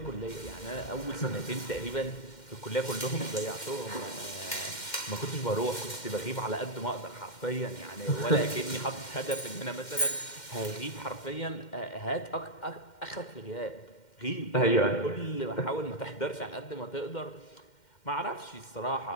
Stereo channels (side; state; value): right; late; 2.1 ms